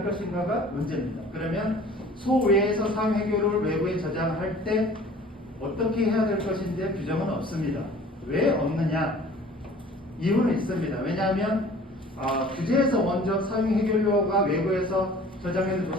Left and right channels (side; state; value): both; normal; correlation 0.48